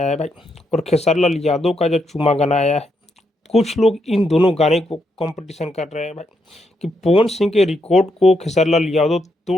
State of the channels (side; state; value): both; normal; correlation 0.80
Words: है भाई, और खेसारी लाल यादव का जो चूमा गाना आया है, कुछ लोग इन दोनों गाने को कंपटीशन कर रहे हैं भाई कि पवन सिंह के रिकॉर्ड को खेसारी लाल यादव